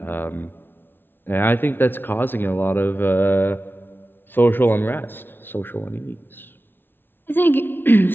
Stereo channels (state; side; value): late; right; 0.10 ms